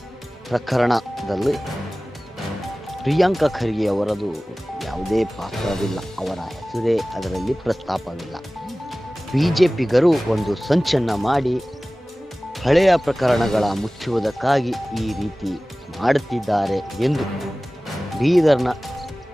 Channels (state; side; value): normal; both; correlation 0.98